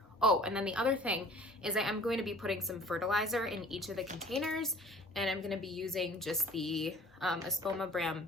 oh, and then the other thing is I am going to be putting some fertilizer in each of the containers, and I'm gonna be using just the Espoma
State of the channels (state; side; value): normal; both; correlation 0.48